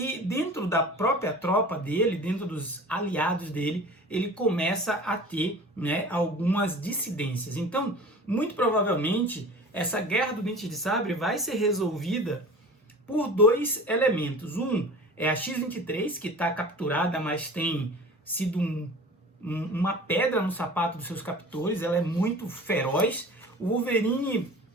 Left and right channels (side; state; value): both; normal; correlation 0.40